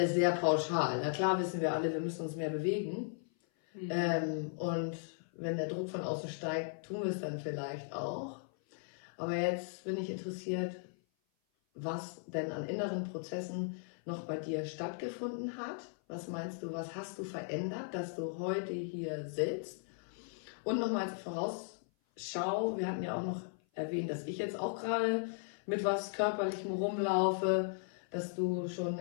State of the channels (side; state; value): right; silent; 53 dB below the other